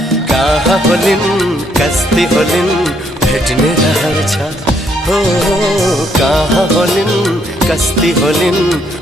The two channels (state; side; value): normal; both; correlation 0.71